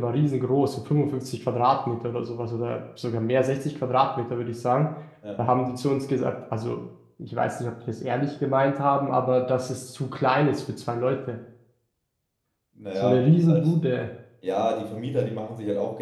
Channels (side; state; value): both; identical; correlation 1.00